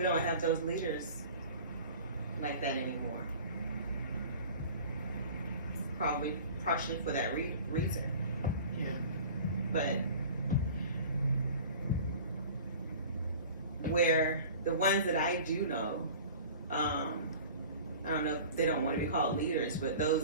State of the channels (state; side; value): inverted; both; correlation -0.42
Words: don't have those leaders like that anymore. Probably partially for that reason. Yeah. But where the ones that I do know, I don't know if they don't want to be called leaders, but those